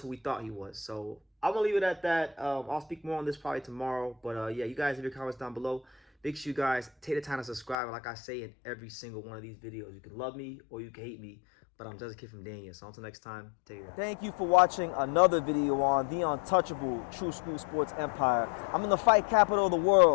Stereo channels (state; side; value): drops out; right; at 7.8 s